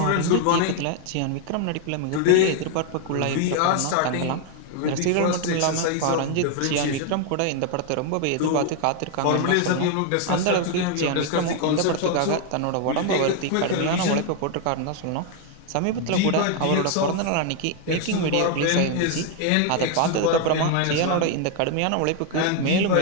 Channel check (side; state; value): both; different; correlation 0.01